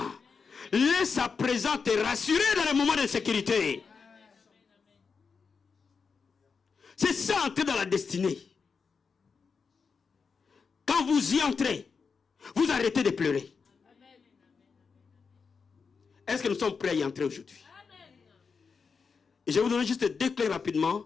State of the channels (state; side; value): quieter; right; 5.4 dB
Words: Laisse sa présence te rassurer dans les moments de sécurité. C'est ça, entrer dans la destinée. Quand vous y entrez, vous arrêtez de pleurer. Est-ce que nous sommes prêts à y entrer aujourd'hui? Et je vais vous donner juste deux clés